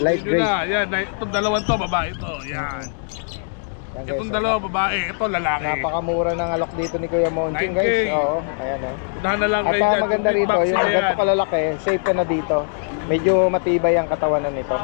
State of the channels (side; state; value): right; silent; digital silence